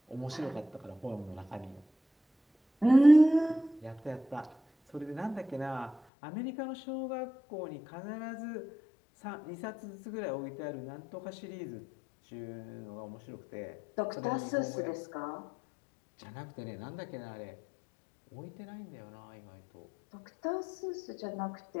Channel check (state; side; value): drops out; right; at 6.0 s